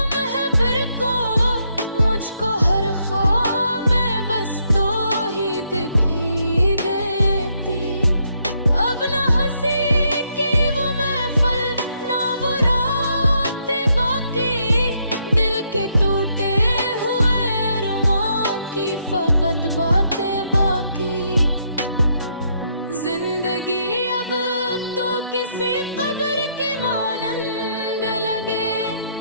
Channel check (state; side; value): inverted; both; correlation -0.75